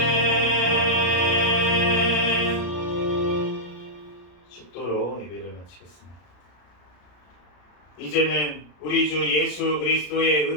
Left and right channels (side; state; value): right; late; 33 ms